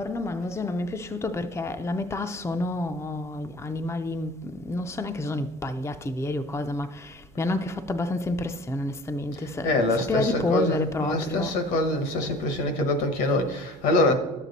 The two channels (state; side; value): normal; both; correlation 0.46